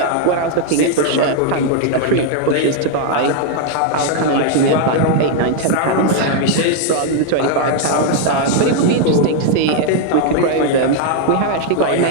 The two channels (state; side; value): different; both; correlation 0.00